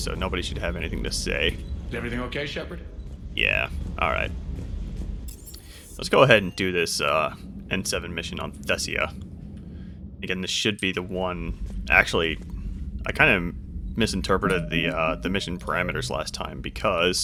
nobody should have anything to say. Is everything okay, Shepard? Yeah, alright. Let's go ahead and do this N7 mission on Thessia. Again, this should be the one... Actually, I kind of misinterpreted the mission parameters last time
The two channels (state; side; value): identical; both; correlation 1.00